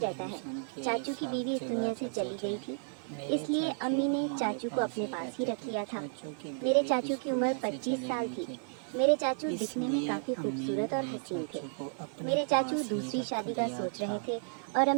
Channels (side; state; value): left; silent; 56 dB below the other